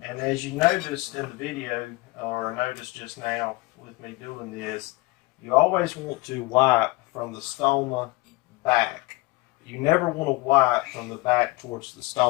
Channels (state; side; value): quieter; right; 22.4 dB